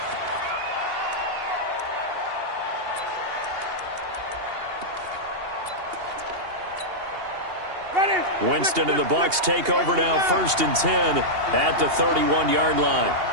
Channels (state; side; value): late; left; 2.8 ms